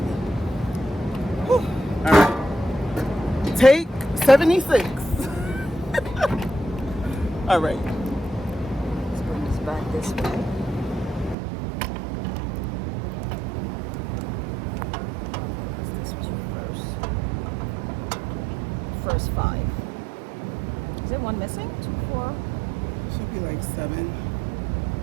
All right. Take 76. All right. Let's bring this back this way. This was your first 5. Is there one missing? 2, 4. Should be like 7.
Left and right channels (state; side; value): drops out; left; at 11.4 s